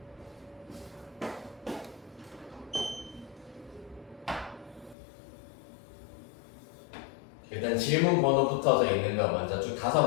일단 질문 번호 붙어져 있는 거 먼저 쭉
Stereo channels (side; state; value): right; drops out; at 5.0 s